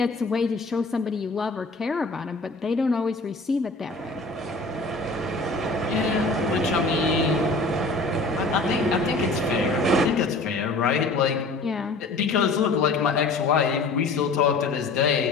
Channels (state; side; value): quieter; right; 3.3 dB